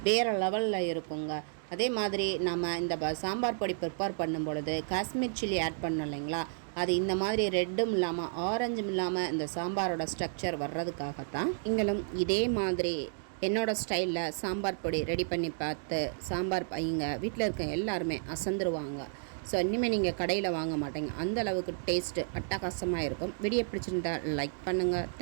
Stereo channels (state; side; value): silent; left; digital silence